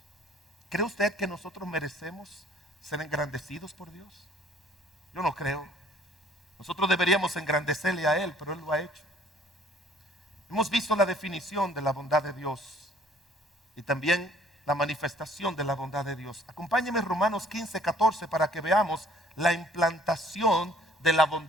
¿Cree usted que nosotros merecemos ser engrandecidos por Dios? Yo no creo. Nosotros deberíamos engrandecerle a Él, pero Él lo ha hecho. Hemos visto la definición de la bondad de Dios y también la manifestación de la bondad de Dios. Acompáñeme Romanos 15:14 para que veamos la implantación de la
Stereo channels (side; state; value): both; normal; correlation 0.57